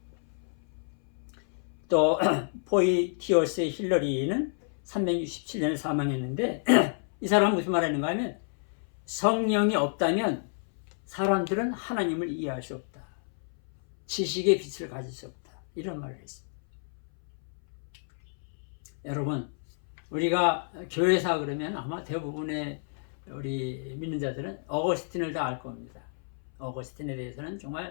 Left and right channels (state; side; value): silent; right; 58 dB below the other